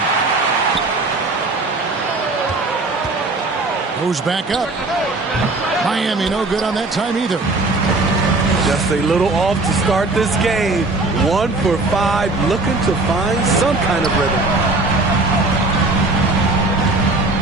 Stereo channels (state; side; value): quieter; left; 3.2 dB